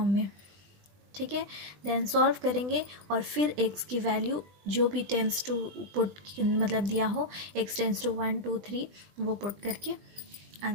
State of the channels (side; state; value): left; late; 20 ms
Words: में, ठीक है। देन सॉल्व करेंगे और फिर x की वैल्यू जो भी टेंस टू पुट मतलब दिया हो, x टेंस टू 1 2 3 वो पुट करके